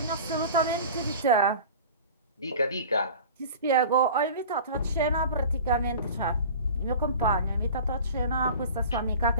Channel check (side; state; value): both; inverted; correlation -0.39